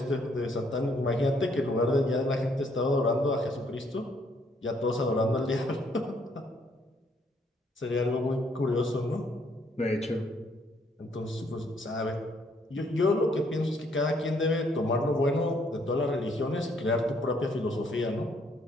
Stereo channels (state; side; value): normal; both; correlation 0.68